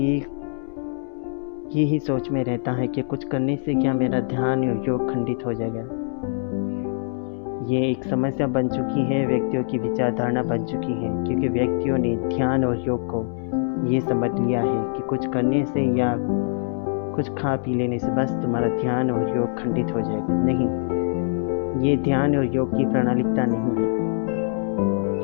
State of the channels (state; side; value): silent; right; digital silence